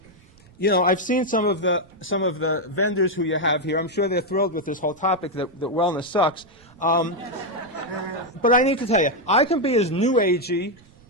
You know, I've seen some of the vendors who you have here. I'm sure they're thrilled with this whole topic that wellness sucks. But I need to tell you, I can be as new agey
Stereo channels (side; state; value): right; noise; rumble, 28 dB below the sound